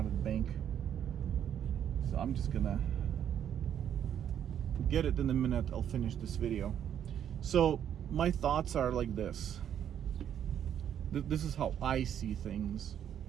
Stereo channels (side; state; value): left; quieter; 9.5 dB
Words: of the bank, so I'm just gonna get it in a minute. I'll finish this video. So my thoughts are like this. This is how I see things.